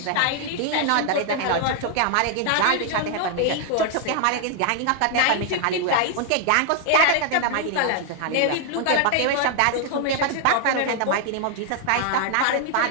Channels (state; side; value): different; both; correlation 0.00